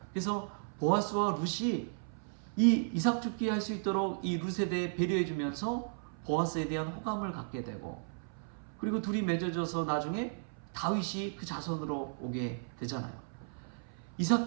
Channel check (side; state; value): left; silent; 55 dB below the other